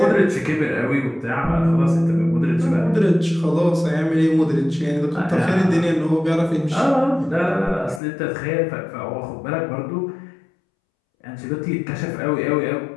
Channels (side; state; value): right; drops out; at 8.0 s